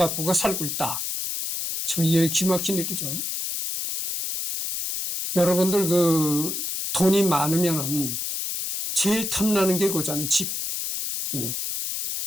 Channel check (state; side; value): noise; left; hiss, 3 dB below the sound